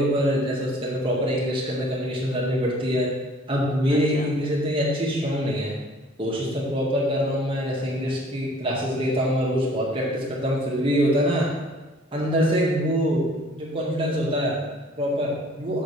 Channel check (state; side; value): normal; both; correlation 0.53